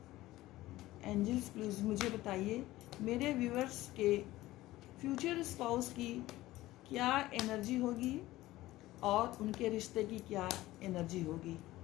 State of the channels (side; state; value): right; quieter; 16.9 dB